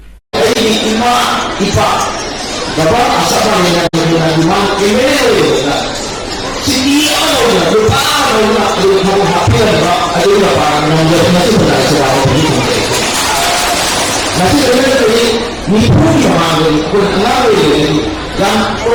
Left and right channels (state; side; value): identical; both; correlation 1.00